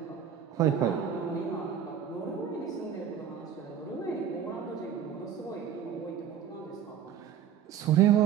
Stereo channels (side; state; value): left; quieter; 8.6 dB